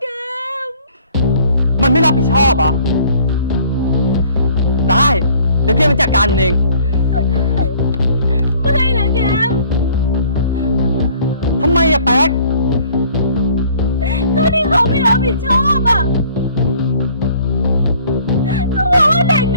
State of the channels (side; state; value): both; inverted; correlation -0.56